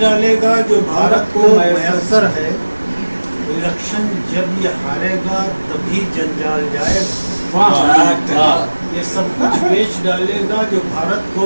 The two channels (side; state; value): both; inverted; correlation -1.00